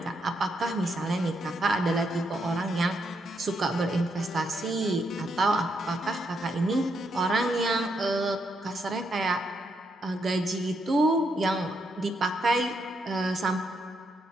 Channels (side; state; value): both; normal; correlation 0.79